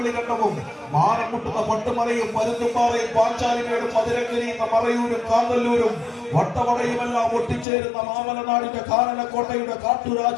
മാനം മുട്ടുന്ന പട്ടുമലയും പരുന്തുംപാറയും പാഞ്ചാലിമേടും മധുരക്കരിയുന്ന മറയൂരും കാന്തല്ലൂരും വട്ടവടയുമെല്ലാം ഒട്ടിച്ചേരുന്ന മാമലനാടിന്റെ കാനനക്കോട്ടയുടെ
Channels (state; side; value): drops out; right; at 7.7 s